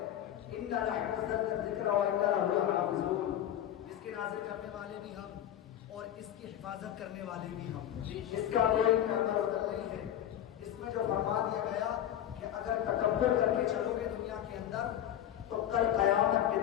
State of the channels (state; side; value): quieter; right; 11.1 dB